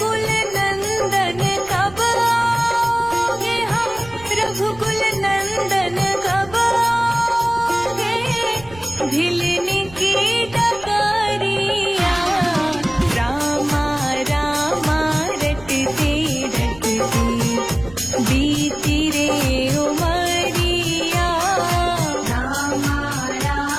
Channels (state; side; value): noise; right; rumble, 20 dB below the sound